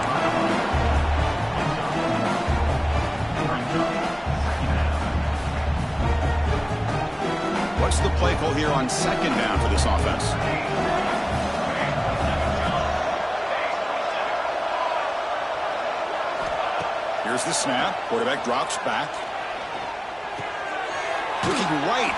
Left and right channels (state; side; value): identical; both; correlation 1.00